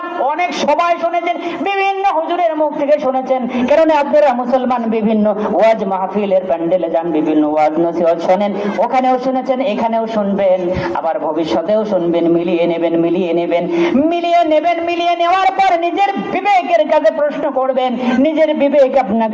অনেক সবাই শুনেছেন, বিভিন্ন হুজুরের মুখ থেকে শুনেছেন, কারণ আপনারা মুসলমান বিভিন্ন ওয়াজ মাহফিলের প্যান্ডেলে যান, বিভিন্ন ওয়াজ নসিহত শোনেন, ওখানেও শুনেছেন, এখানেও শুনবেন, আবার ভবিষ্যতেও শুনবেন। মিলিয়ে নেওয়ার পর নিজের বিবেকের কাছে প্রশ্ন করবেন, নিজের বিবেক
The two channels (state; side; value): identical; both; correlation 1.00